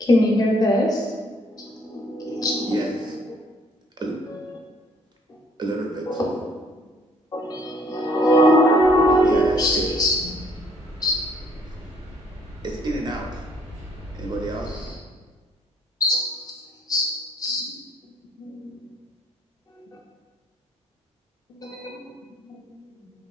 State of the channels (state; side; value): normal; both; correlation 0.63